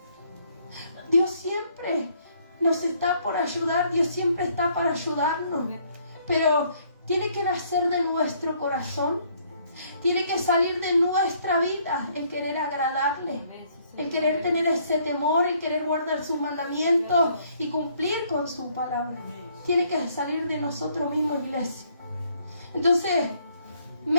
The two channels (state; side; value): inverted; both; correlation -0.66